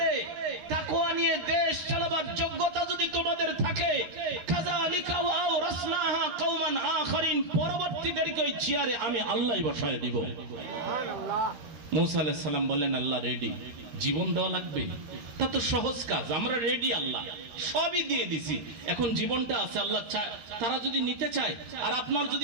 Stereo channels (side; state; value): left; late; 13 ms